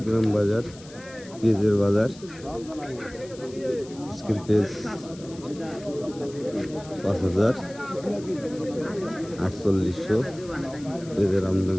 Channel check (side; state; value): left; noise; hiss, 20 dB below the sound